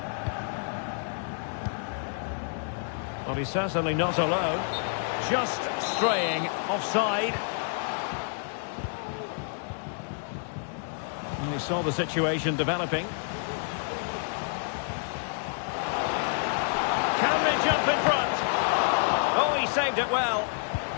Well, he's certainly not alone. Just straying offside. And he saw the situation developing. Can they jump in front? Oh, he saved it well.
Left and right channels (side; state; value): right; silent; 59 dB below the other